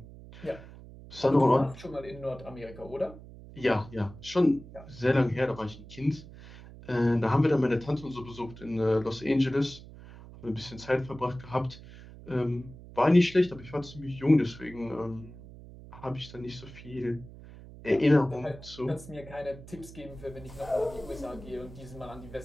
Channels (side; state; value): right; noise; hum, 17 dB below the sound